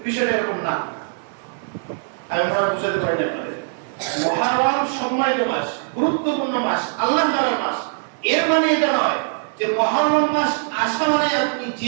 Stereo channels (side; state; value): left; silent; 56 dB below the other